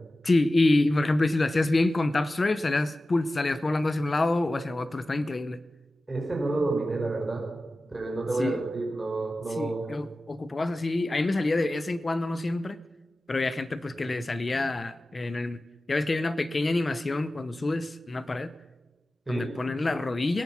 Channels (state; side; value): normal; both; correlation 0.95